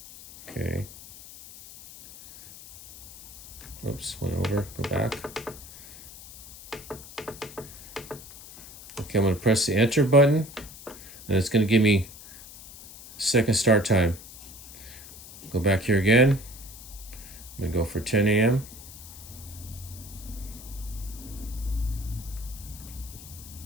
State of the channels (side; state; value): left; noise; hiss, 16 dB below the sound